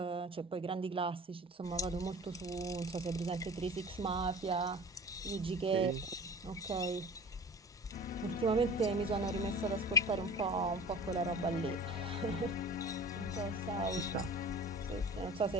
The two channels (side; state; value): both; normal; correlation 0.40